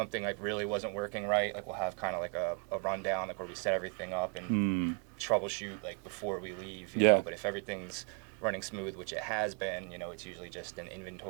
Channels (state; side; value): quieter; left; 38.6 dB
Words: like, really wasn't working right, like, we'll have kind of like a rundown, like, where we set everything up and troubleshoot, like, before we leave, you know. But if everything's running smooth, which it has been, it's usually just an